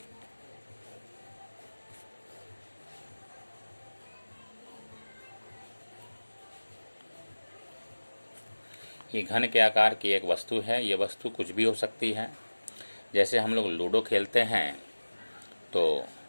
ये घन के आकार की एक वस्तु है। ये वस्तु कुछ भी हो सकती है। जैसे हम लोग लूडो खेलते हैं तो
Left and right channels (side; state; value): both; inverted; correlation -1.00